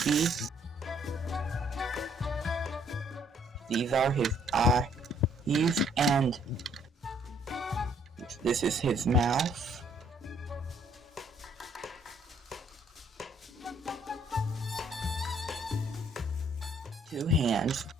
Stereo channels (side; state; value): both; normal; correlation 0.65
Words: These are his eyes and this is his mouth. Two hands.